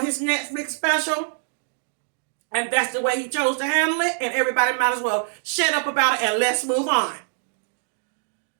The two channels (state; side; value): silent; left; digital silence